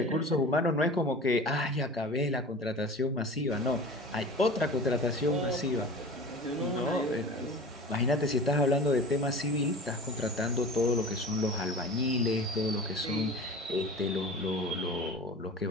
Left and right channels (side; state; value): both; normal; correlation 0.37